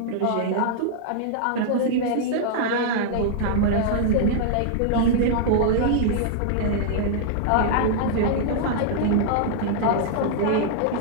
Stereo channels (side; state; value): both; different; correlation -0.01